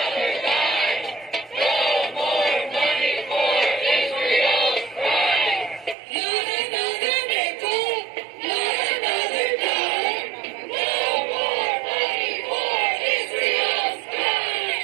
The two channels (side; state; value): left; drops out; at 6.0 s